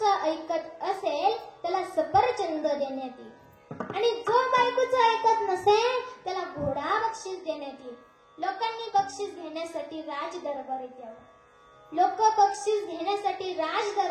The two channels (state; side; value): identical; both; correlation 1.00